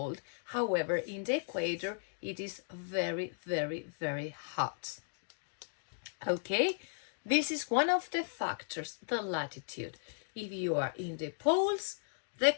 However, in the equator, it is very, very, very hot. Okay, this is one of the factors, the latitude. If you are in the poles, the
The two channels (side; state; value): right; silent; digital silence